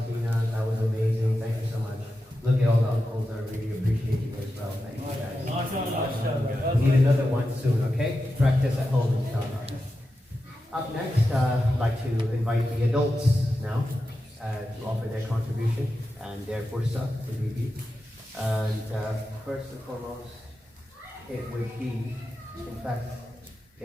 That was amazing. Thank you so much. Look at all the uncles. I really appreciate you as well. Thank you guys. We need another one soon, okay? Practice at home, inshallah. Up next, I'd like to invite the adults now to offer their contribution and their fursa to be. And first and foremost, it would be, in fact,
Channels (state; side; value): normal; both; correlation 0.90